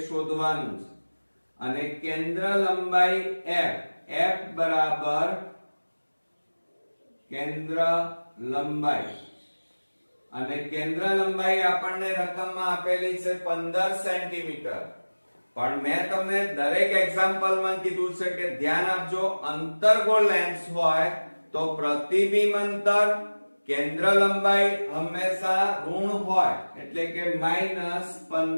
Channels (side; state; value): both; inverted; correlation -1.00